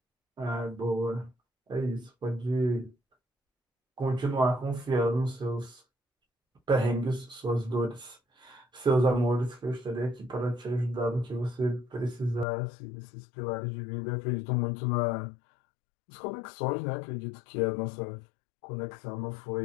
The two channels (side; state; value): right; drops out; at 12.5 s